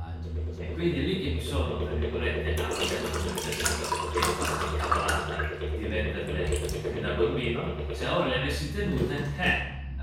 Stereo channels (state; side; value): identical; both; correlation 1.00